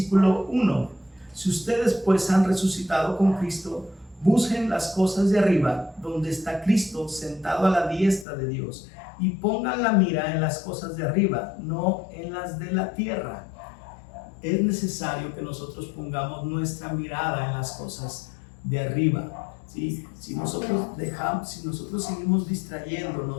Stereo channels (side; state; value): right; drops out; at 8.2 s